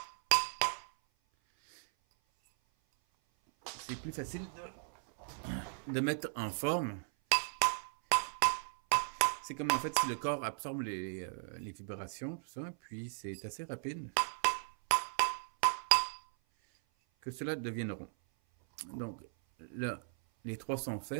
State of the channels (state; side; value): silent; left; 53 dB below the other